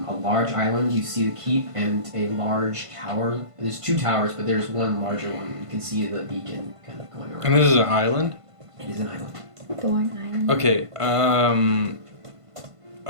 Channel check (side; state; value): left; late; 1.5 ms